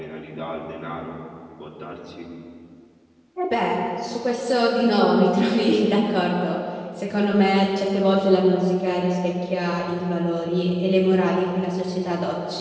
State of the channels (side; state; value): both; identical; correlation 1.00